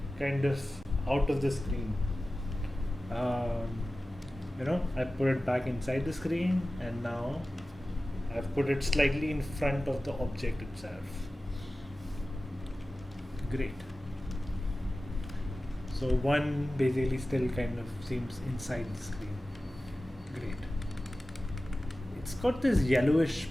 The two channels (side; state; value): both; normal; correlation 0.96